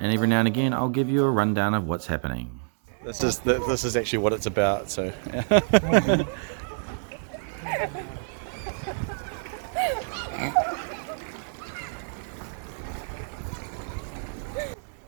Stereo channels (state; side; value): silent; left; digital silence